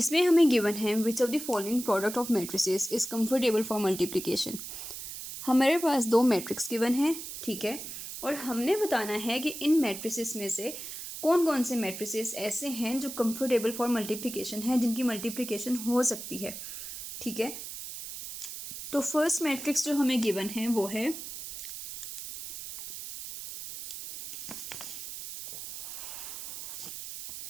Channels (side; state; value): right; noise; hiss, 9 dB below the sound